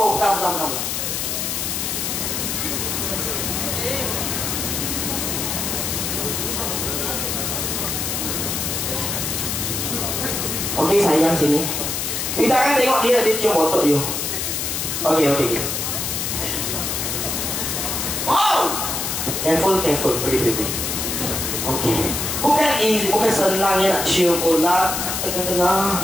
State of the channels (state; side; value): noise; left; hiss, 1 dB below the sound